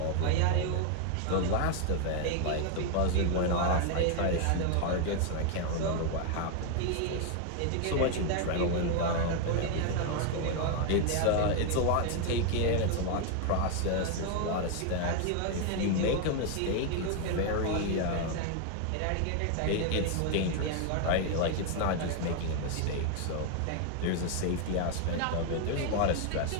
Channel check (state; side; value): different; both; correlation 0.01